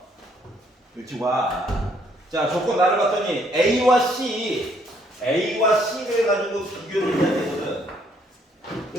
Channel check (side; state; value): both; normal; correlation 0.67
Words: 그렇지 와. 자 조건 나를 봤더니 A와 C를 가지고 비교를 해야 되거든.